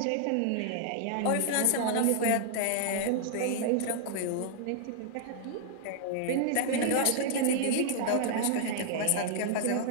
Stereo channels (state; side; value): different; both; correlation 0.00